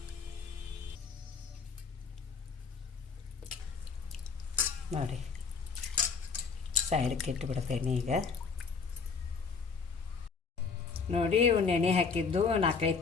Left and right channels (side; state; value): right; quieter; 5.3 dB